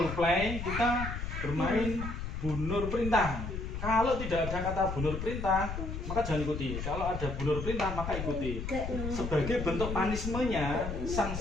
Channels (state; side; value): noise; left; rumble, 5 dB below the sound